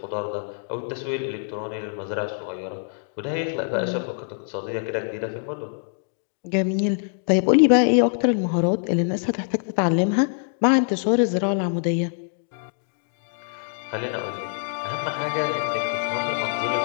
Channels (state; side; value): silent; right; digital silence